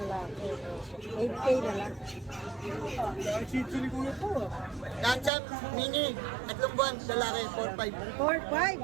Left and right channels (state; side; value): drops out; left; at 5.3 s